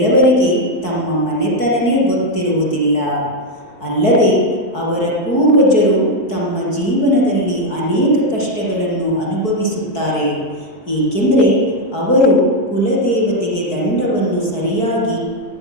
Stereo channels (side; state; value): right; late; 4.6 ms